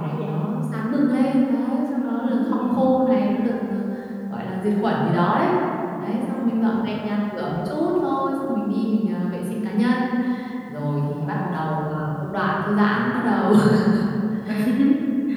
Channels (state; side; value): identical; both; correlation 1.00